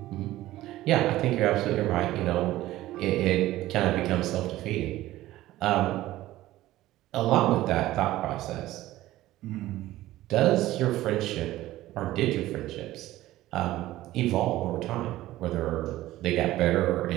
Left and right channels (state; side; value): quieter; left; 15.8 dB